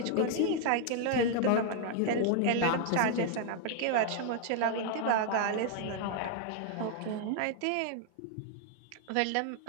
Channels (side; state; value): both; different; correlation 0.00